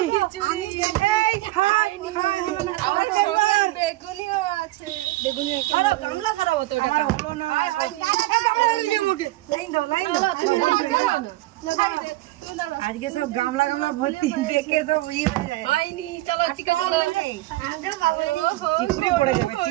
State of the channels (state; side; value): quieter; left; 18.3 dB